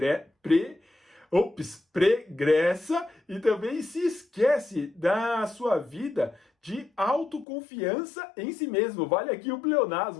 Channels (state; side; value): drops out; right; at 7.5 s